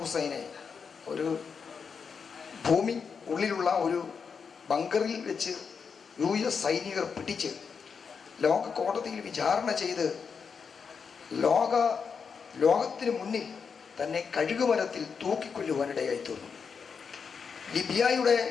ഒരു ഭൂമി ഉള്ളിലുള്ള ഒരു ബങ്കറിൽ വെച്ച് US സൈനികർ പിടിച്ച് ലോക കോടതിയിൽ വിചാരണ ചെയ്ത് ലോകത്തിന് മുന്നിൽ തന്നെ കഴുകുമരത്തിൽ തൂക്കിക്കൊല്ലുവാനിടയായി തീർന്നു. ലിബിയയുടെ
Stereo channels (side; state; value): right; quieter; 6.0 dB